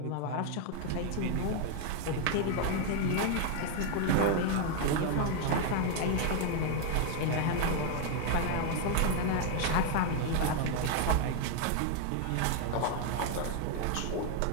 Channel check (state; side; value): different; both; correlation 0.00